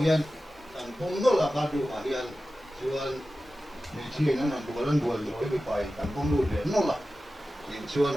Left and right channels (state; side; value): normal; both; correlation 0.94